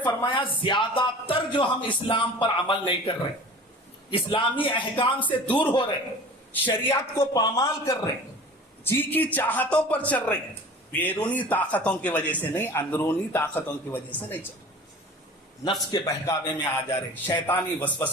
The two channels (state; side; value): normal; both; correlation 0.40